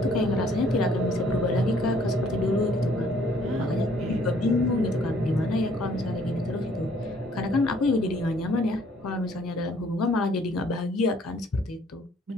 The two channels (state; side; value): normal; both; correlation 0.62